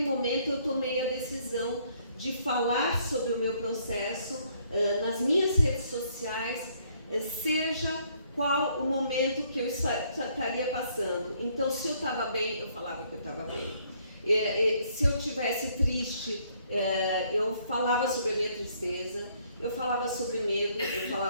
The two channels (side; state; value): both; inverted; correlation -0.66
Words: momento eu tomei a decisão de falar sobre o meu processo nas minhas redes sociais, seja qual o momento que eu estaria passando. Então, se eu estava bem, eu falava que eu estava bem. Se eu estivesse triste, eu falava sobre a minha tristeza, eu falava sobre medo, eu